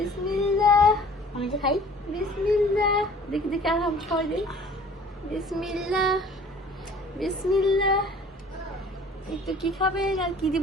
আমি তো খাই। বিসমিল্লাহ। দেখি দেখি আর হাম খাওয়াই দিই। বিসমিল্লাহ বিসমিল্লাহ। একটু কি খাবেন আর কি দিব?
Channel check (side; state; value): both; normal; correlation 0.50